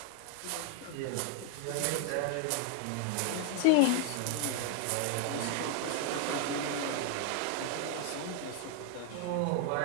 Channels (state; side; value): different; both; correlation 0.00